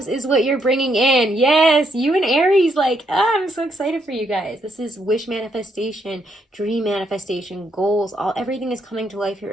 is what you're bringing in. Yes, you and Aries, like, I'm so excited for you guys. This is wish manifestation, dream manifestation, goals, everything is coming to life here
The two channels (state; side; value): normal; both; correlation 0.75